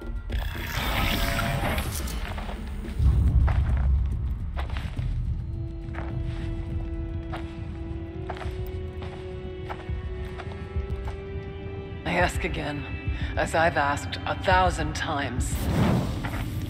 ask again, as I've asked 1,000 times.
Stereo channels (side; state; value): both; identical; correlation 1.00